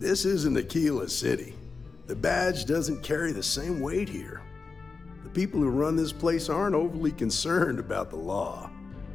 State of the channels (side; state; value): right; quieter; 4.4 dB